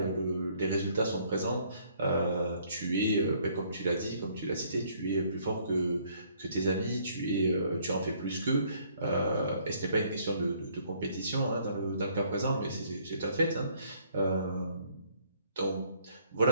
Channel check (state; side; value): inverted; both; correlation -0.64